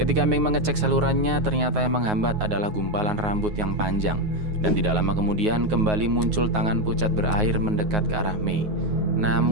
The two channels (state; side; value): late; left; 9.4 ms